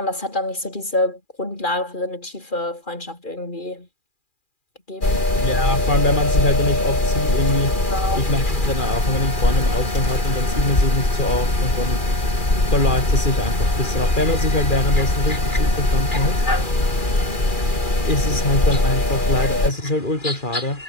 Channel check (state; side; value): late; right; 2.4 ms